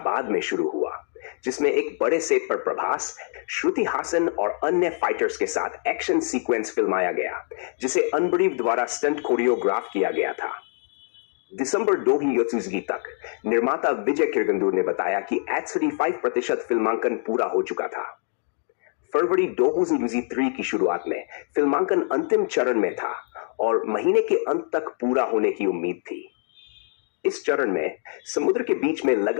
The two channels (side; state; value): right; silent; 62 dB below the other